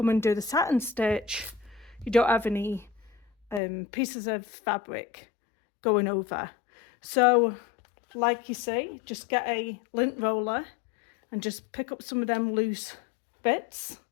and do the satin stitch, you don't have any pieces of fabric going over. So like you see, just get a lint roller and just pick up some of them loose bits,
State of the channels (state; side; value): drops out; right; at 3.6 s